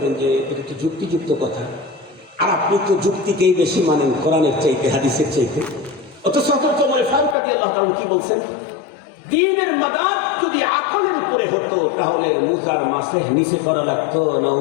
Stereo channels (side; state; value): right; drops out; at 7.4 s